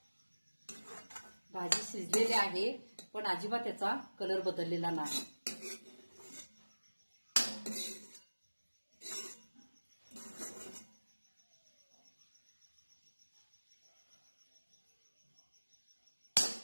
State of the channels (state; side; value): inverted; both; correlation -1.00